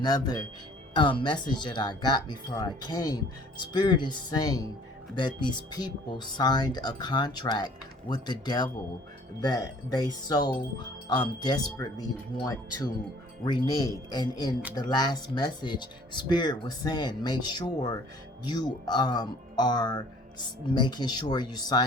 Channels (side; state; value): both; normal; correlation 0.53